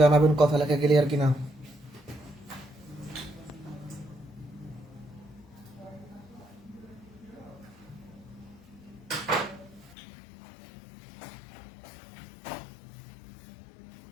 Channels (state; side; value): drops out; right; at 10.0 s